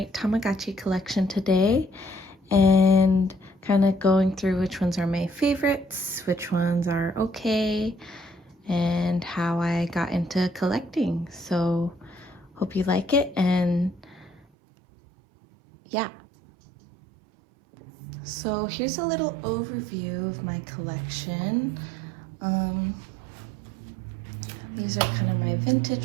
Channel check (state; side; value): drops out; left; at 14.5 s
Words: Tamagotchi collection today and kind of going through which ones are my favorites, which ones are okay, and how I got into collecting. So hope you like it, and yeah. So here's a little overview of my collection. These are kind of my vintage